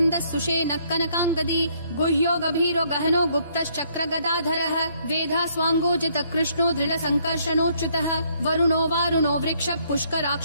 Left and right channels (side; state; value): both; inverted; correlation -0.67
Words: सुषेण कनकाङ्गदी गुह्यो गभीरो गहनो गुप्तश्चक्र गदाधरः वेधा स्वाङ्गोजित कृष्णो दृढ संकर्षणोच्युतः वरुणो वारुणो वृक्ष